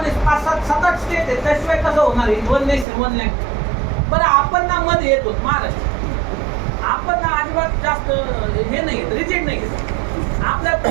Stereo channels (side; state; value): left; drops out; at 2.9 s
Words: 5-7 स्टेट आहेत, त्याशिवाय कसं होणार आहे वन नेशन वन लँग्वेज. बरं आपण ना मध्ये येतो महाराष्ट्र, आपण ना अजिबात जास्त हे नाही रिजिड नाही. आपल्या